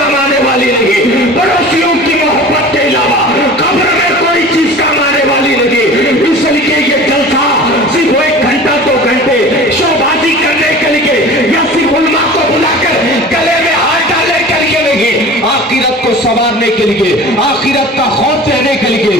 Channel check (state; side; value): normal; both; correlation 0.39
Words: आने वाली नहीं, पड़ोसियों की मोहब्बत के अलावा कब्र में कोई चीज काम आने वाली नहीं। इसलिए ये जलसा सिर्फ 1 घंटा 2 घंटे शोबाजी करने के लिए, या सिर्फ उलमा को बुलाकर गले में हाथ डालने के लिए नहीं, आखिरत को संवारने के लिए, आखिरत का खौफ देने के